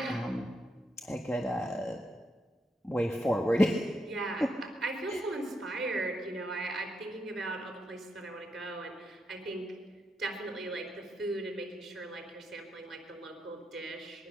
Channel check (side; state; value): both; normal; correlation 0.82